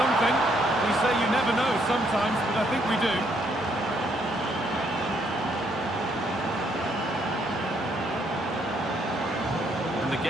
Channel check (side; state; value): both; normal; correlation 0.71